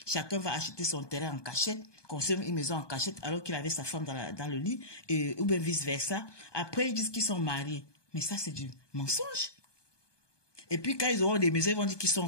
Chacun va acheter son terrain en cachette, construire une maison en cachette alors qu'il avait sa femme dans le lit, ou bien vice-versa. Après, ils disent qu'ils sont mariés. Mais ça, c'est du mensonge. Et puis, quand ils auront des maisons, ils vont dire qu'ils sont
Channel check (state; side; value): late; right; 1.2 ms